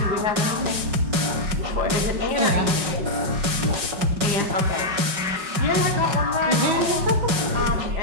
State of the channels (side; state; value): left; late; 5.4 ms